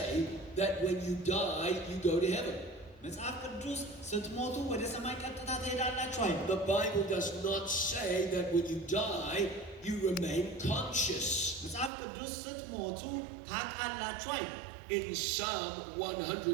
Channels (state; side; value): drops out; left; at 11.9 s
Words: that when you die, you go to heaven. መጽሐፍ ቅዱስ ስትሞቱ ወደ ሰማይ ቀጥታ ትሄዳላችሁ አይደል The Bible does not say that when you die, you remain conscious. መጽሐፍ ቅዱስ ስትሞቱ ታውቃላችሁ አይደል In Psalm